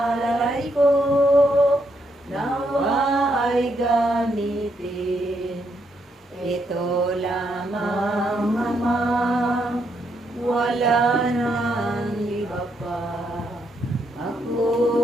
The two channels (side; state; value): both; normal; correlation 0.77